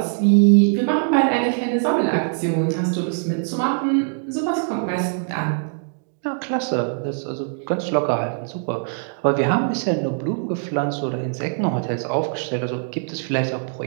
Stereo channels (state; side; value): silent; left; digital silence